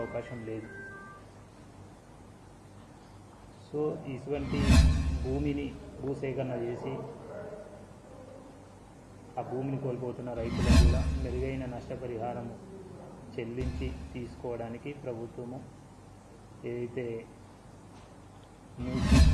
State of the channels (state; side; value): identical; both; correlation 1.00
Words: లేదు. సో ఇటువంటి భూమిని భూసేకరణ చేసి ఆ భూమిని కోల్పోతున్న రైతులకు కూడా మెరుగైన నష్టపరిహారం చెల్లించి తీసుకోవడానికి ప్రభుత్వము ఏదైతే మూసి